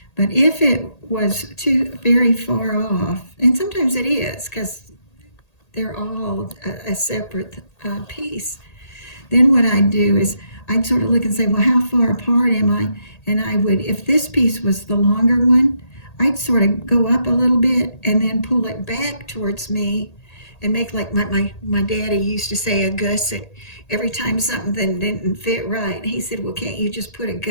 But if it was too very far off, and sometimes it is because they're all a separate piece, then what I'd do is I'd sort of look and say, well, how far apart am I? And I would, if this piece was the longer one, I'd sort of go up a little bit and then pull it back towards me and make like my daddy used to say, a gusset. Every time something didn't fit right, he said, well, can't you just put a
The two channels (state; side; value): late; right; 1.8 ms